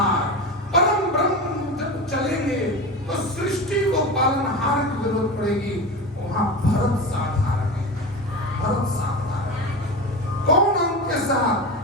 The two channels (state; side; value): normal; both; correlation 0.25